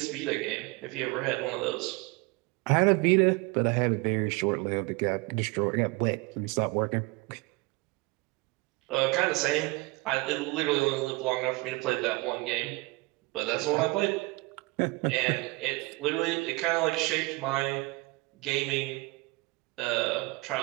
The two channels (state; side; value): quieter; left; 24.7 dB